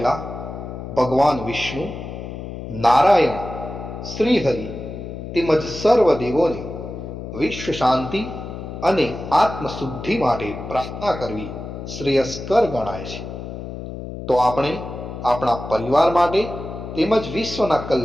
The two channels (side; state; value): left; noise; hum, 9 dB below the sound